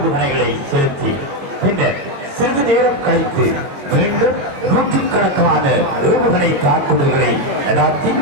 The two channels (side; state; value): left; late; 21 ms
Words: செலுத்தி பின்னர் சிறிது நேரம் கழித்து மீண்டும் நூற்றுக்கணக்கான ஏவுகணை தாக்குதல்களை நடாத்தி